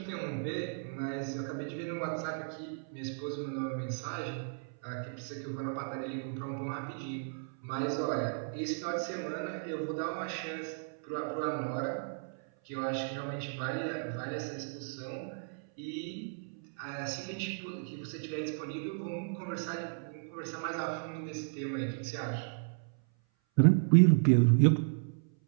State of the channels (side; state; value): left; silent; 55 dB below the other